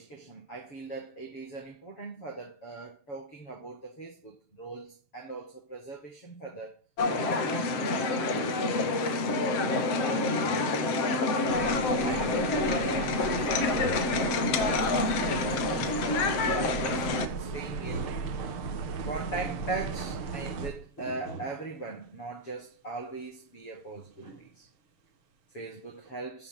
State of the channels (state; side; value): late; right; 7.7 ms